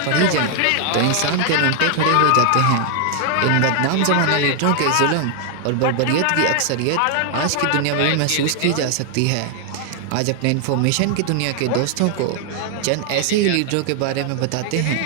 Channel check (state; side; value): different; both; correlation 0.00